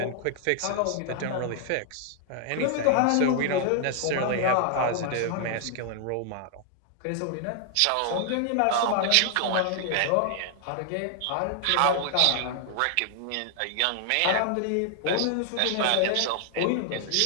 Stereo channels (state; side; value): different; both; correlation 0.00